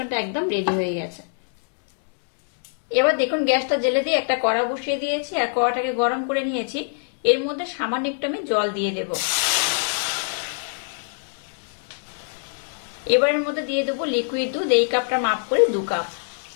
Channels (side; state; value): right; silent; digital silence